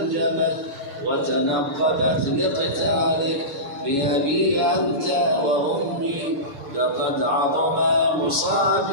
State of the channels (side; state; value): left; late; 7.2 ms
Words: وتنقبت لقتالك. بأبي أنت وأمي لقد عظم